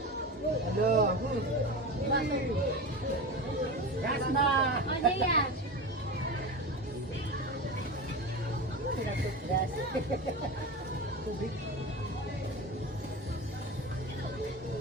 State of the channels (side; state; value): both; normal; correlation 0.25